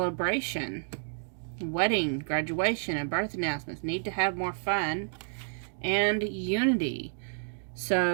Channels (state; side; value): silent; left; digital silence